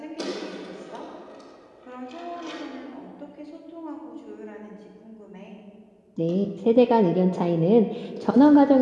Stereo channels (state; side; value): identical; both; correlation 1.00